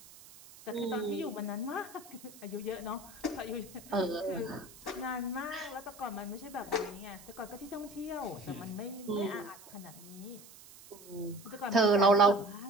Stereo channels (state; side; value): noise; right; hiss, 19 dB below the sound